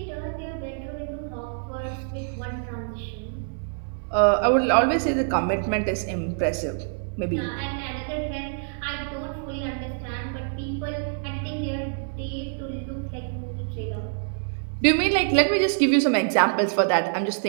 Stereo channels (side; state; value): left; silent; 61 dB below the other